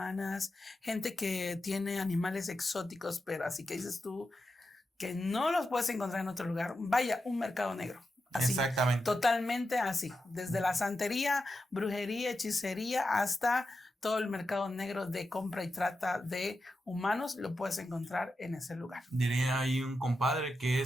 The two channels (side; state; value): both; normal; correlation 0.89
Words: gente que tiene animales exóticos, pero así que dices tú que no los puedes encontrar en otro lugar. Vaya, un mercado negro. Así, exactamente. Totalmente así. Desde la santería, brujería, hechicería, hasta todo el mercado negro de compra y trata de humanos, lo puedes encontrar en ese lugar. Diría ahí un compadre que